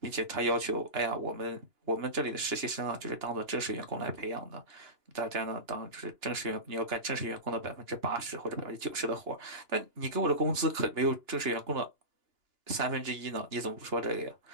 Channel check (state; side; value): late; left; 2.9 ms